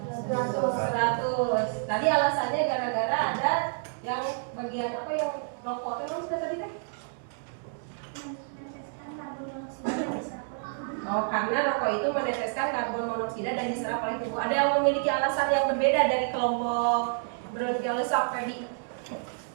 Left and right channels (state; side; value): silent; left; digital silence